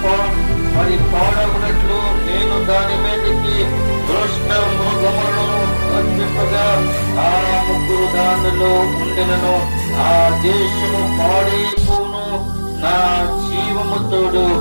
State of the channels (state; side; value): inverted; both; correlation -1.00